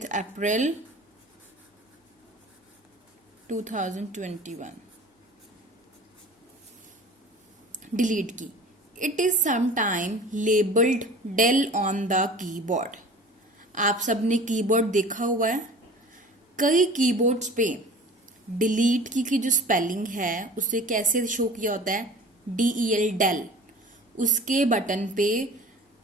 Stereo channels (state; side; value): normal; both; correlation 0.42